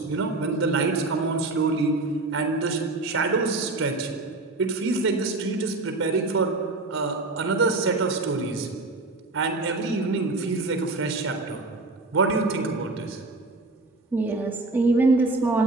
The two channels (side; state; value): left; quieter; 3.2 dB